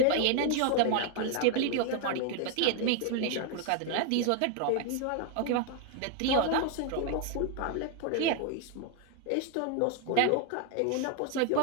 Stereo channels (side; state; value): both; different; correlation 0.00